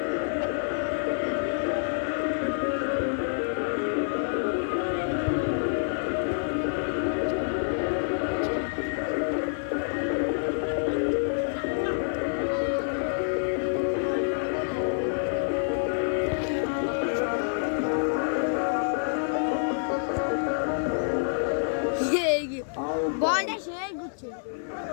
বলটা সেই গুচ্ছে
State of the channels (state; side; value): silent; right; 60 dB below the other